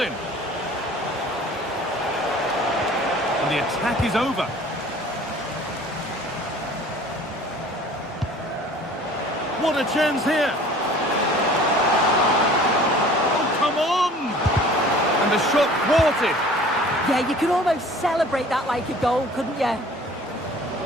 And the attack is over. What a chance here. Oh, come on! And the shot thwarted. Yeah, you could almost celebrate that like a goal, couldn't you? I'm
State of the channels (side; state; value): both; normal; correlation 0.48